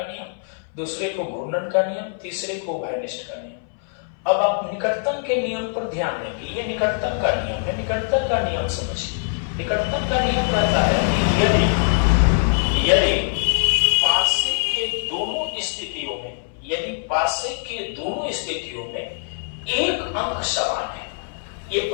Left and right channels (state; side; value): silent; right; 60 dB below the other